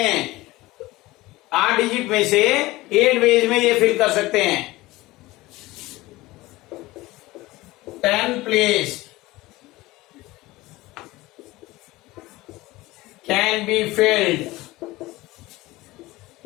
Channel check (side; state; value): right; quieter; 19.3 dB